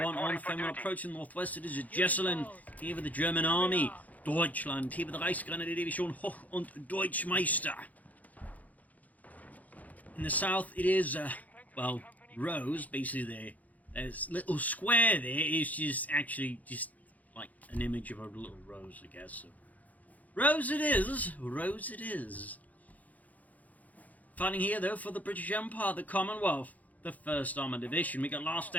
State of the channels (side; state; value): right; late; 0.077 ms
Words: on Faymonville approaching northwest. It is Jesulin, here with the German army. Deutschland, here with the Reichsgrenadier-Division Hoch und Deutschmeister. In the south, it is, well, Rose, basically there's little square there is just actually just like an image of a little rose, I guess. So, Rose it is. Fighting here, though, for the British Empire, the Commonwealth, the 1st Armoured Division. We got last